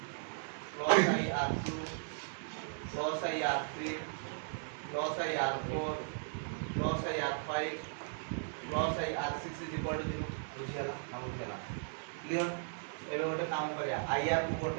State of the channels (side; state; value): left; silent; digital silence